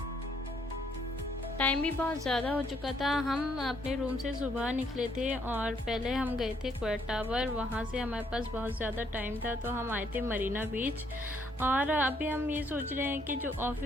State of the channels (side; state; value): both; normal; correlation 0.70